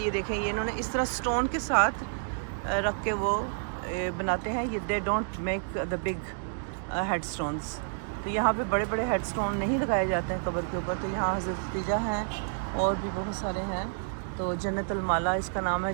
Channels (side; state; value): left; silent; digital silence